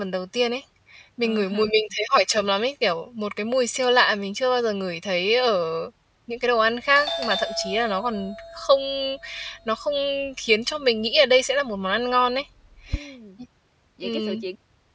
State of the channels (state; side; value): identical; both; correlation 1.00